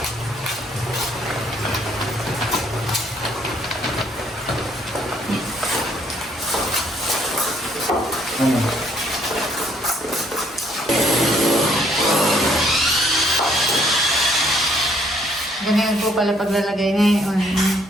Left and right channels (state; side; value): normal; both; correlation 0.67